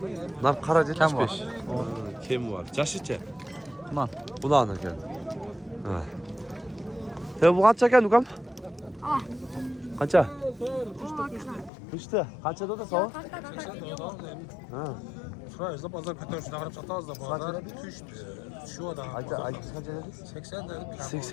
Nar qara 75. Kim var? Jashicha? Man. Bulan ekan. Ha. Bu qancha ekan ukam? Qancha? Üçte. Qanchada da so'm? Ha. Şuraya da pazar kötü şuna kadar sataz da pazar düştü. Şu da. Ayta qancha dedingiz? 80 dedim.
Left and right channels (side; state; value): right; drops out; at 11.7 s